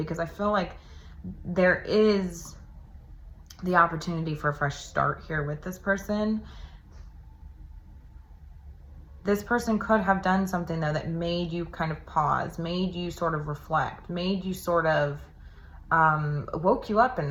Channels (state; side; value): identical; both; correlation 1.00